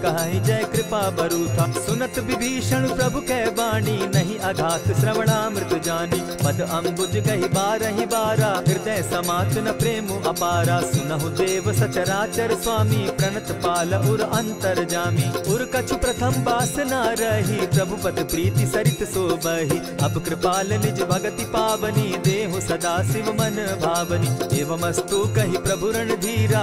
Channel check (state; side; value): identical; both; correlation 1.00